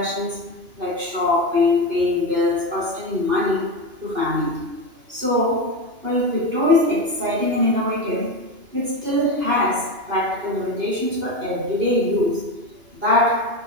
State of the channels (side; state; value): left; late; 2.9 ms